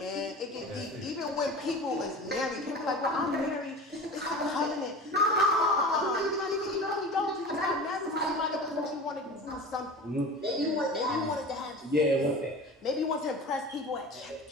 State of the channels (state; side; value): normal; both; correlation 0.35